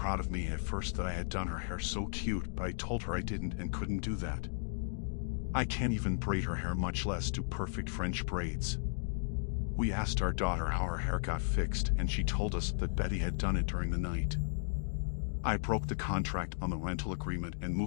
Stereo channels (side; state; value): right; silent; digital silence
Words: of me at first that I had done her hair so cute, but I told her I didn't and couldn't do that. I can't even braid her hair, much less do perfect French braids. We asked our daughter how her hair got fixed, and she told us that Betty had done it during the night. I broke the contract on the rental agreement and